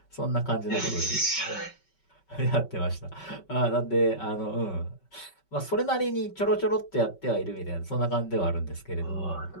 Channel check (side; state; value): right; late; 5.3 ms